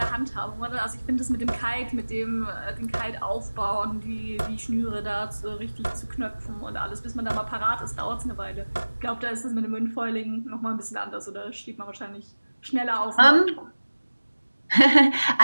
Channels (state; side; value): inverted; both; correlation -1.00